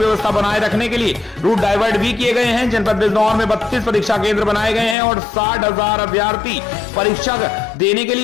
बनाए रखने के लिए रूट डाइवर्ट भी किए गए हैं। जनपद बिजनौर में 32 परीक्षा केंद्र बनाए गए हैं और 60,000 अभ्यर्थी परीक्षा देने के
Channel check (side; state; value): right; drops out; at 5.0 s